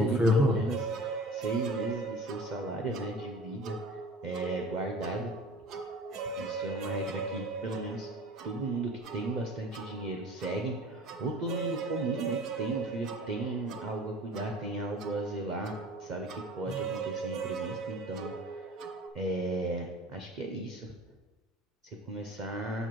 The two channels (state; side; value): normal; both; correlation 0.42